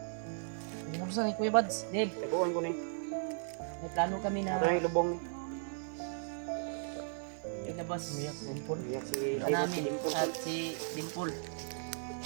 Buksan ni Kuya Bads. Dave, taguan ko ni. May plano kami na ay lubong. Ilabas Miyak Dimpol. Miyak si namin at si Dimpol.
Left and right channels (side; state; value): left; silent; digital silence